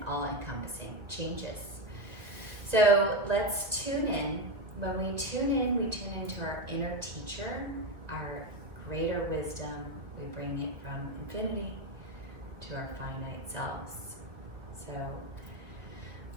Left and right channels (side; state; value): left; late; 2.0 ms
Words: all-encompassing changes. So let's tune in. When we tune into our inner teacher, our greater wisdom. We bring it from infinity to our finite selves. So